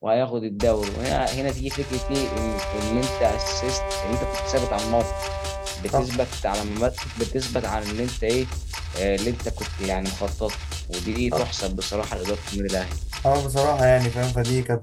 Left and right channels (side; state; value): both; identical; correlation 1.00